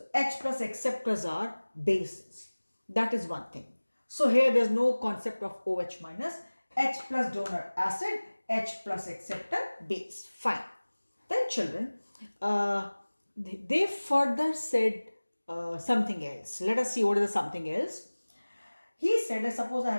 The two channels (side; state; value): both; inverted; correlation -1.00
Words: H plus acceptors are bases. That is one thing. So here there's no concept of OH minus. H plus donor acid, H plus acceptor base. Fine. Then children, they further said something else. Let us see what is the something else. He said, suppose I